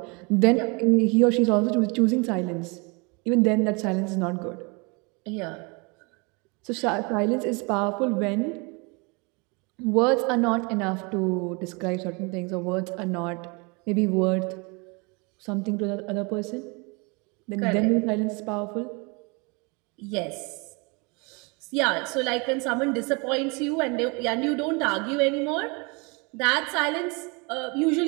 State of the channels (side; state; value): left; quieter; 30.0 dB